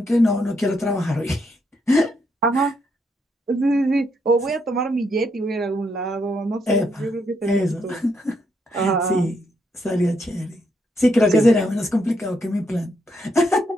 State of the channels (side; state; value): both; normal; correlation 0.76